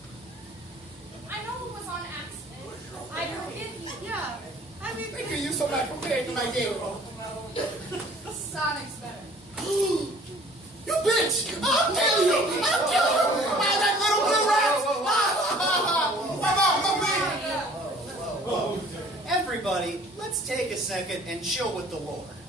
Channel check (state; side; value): normal; both; correlation 0.52